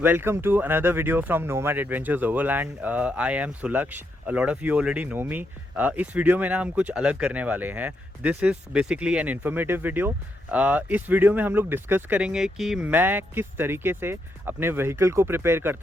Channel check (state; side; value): normal; both; correlation 0.80